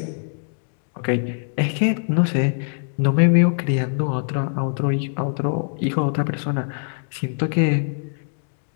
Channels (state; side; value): silent; right; digital silence